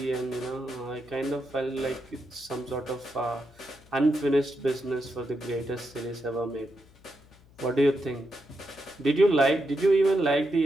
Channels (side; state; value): left; noise; hum, 26 dB below the sound